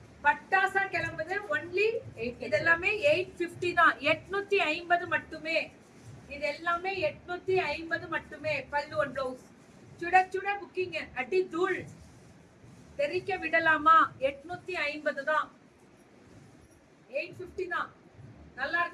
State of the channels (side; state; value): both; identical; correlation 1.00